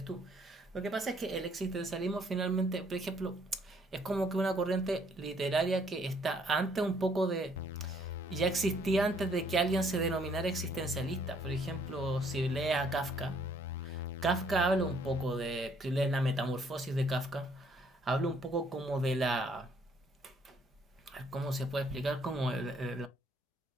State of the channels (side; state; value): both; normal; correlation 0.65